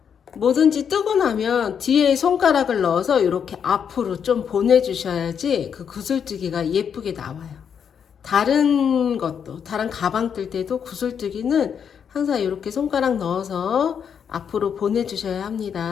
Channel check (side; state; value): right; quieter; 7.5 dB